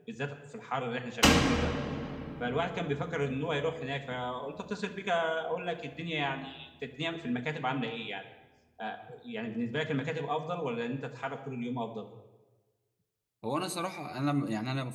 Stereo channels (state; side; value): identical; both; correlation 1.00